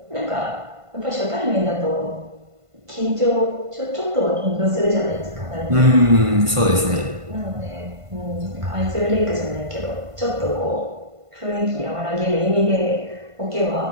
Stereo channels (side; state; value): left; late; 1.5 ms